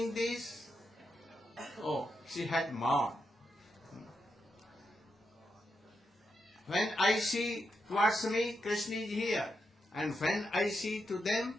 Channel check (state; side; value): normal; both; correlation 0.84